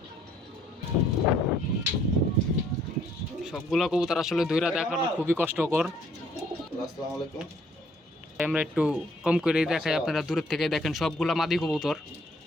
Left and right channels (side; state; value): both; normal; correlation 0.63